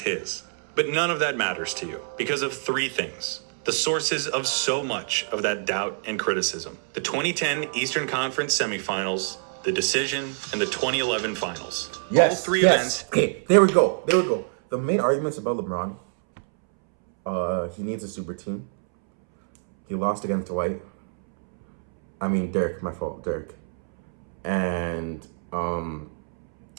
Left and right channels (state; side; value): silent; left; 61 dB below the other